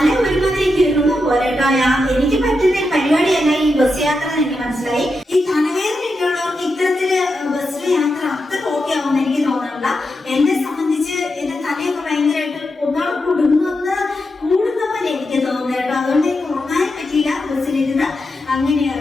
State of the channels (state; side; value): normal; both; correlation 0.87